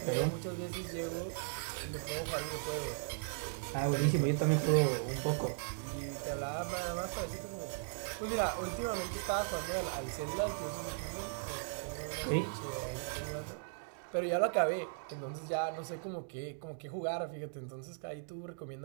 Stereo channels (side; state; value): left; silent; digital silence